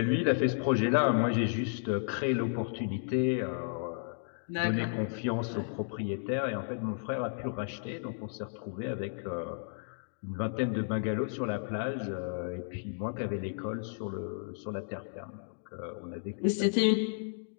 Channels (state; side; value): silent; right; digital silence